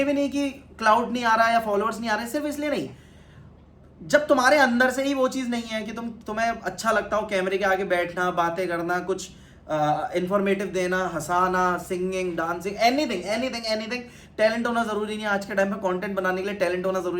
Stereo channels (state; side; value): identical; both; correlation 1.00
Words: भी नहीं कि क्लाउड नहीं आ रहा या फॉलोअर्स नहीं आ रहे, सिर्फ इसलिए नहीं, जब तुम्हारे अंदर से ही वो चीज़ नहीं है कि तुम्हें अच्छा लगता हो कैमरे के आगे बैठना, बातें करना, कुछ इंफॉर्मेटिव देना, हंसाना, सिंगिंग, डांसिंग, एनीथिंग। टैलेंट होना ज़रूरी नहीं है आज के टाइम में, कंटेंट बनाने के लिए टैलेंट होना